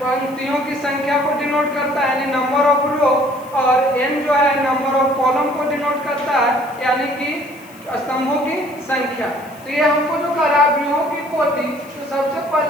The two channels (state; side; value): noise; left; hiss, 24 dB below the sound